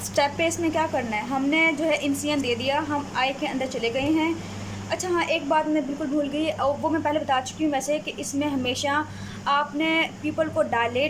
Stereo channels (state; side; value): identical; both; correlation 1.00